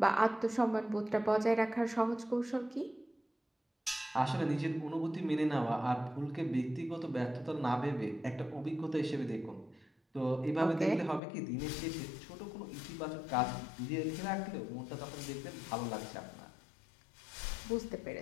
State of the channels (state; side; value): drops out; right; at 11.2 s